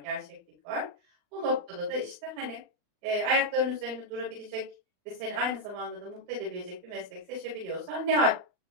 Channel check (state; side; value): late; left; 39 ms